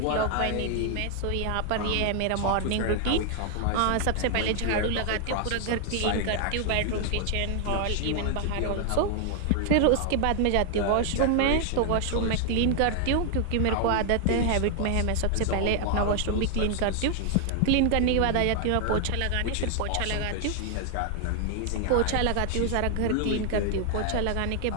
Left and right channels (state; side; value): different; both; correlation 0.00